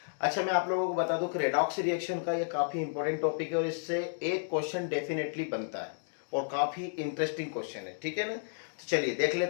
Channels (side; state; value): right; silent; digital silence